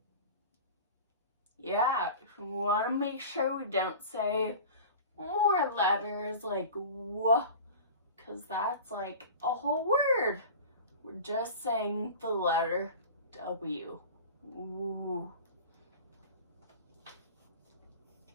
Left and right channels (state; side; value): inverted; both; correlation -0.36